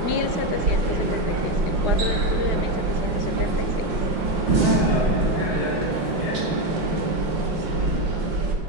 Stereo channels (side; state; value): left; late; 5.8 ms